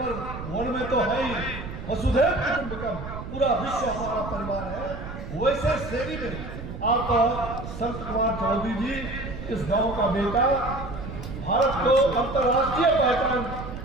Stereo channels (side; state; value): right; noise; rumble, 9 dB below the sound